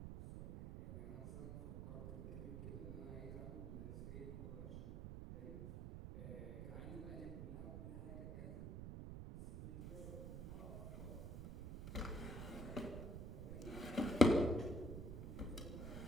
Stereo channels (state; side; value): noise; right; rumble, 6 dB below the sound